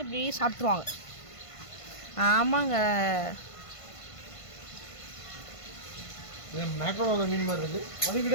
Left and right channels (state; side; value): late; right; 1.5 ms